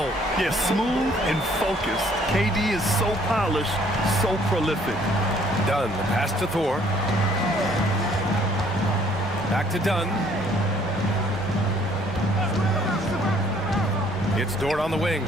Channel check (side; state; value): both; normal; correlation 0.61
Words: Yeah, smooth and focused. KD is so polished, so prolific. Dunn, the pass to Thor. Back to Dunn. It's Dort on the wing.